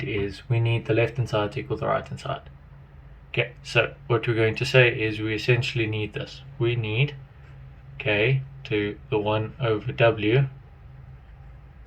is, we need the left hand side to equal the right hand side. Okay, so what we're going to say is we essentially need this. We need k to the 1 over w.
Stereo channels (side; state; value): both; identical; correlation 1.00